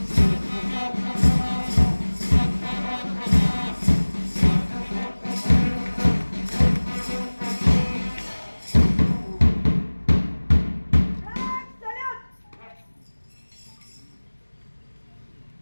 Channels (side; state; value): both; inverted; correlation -1.00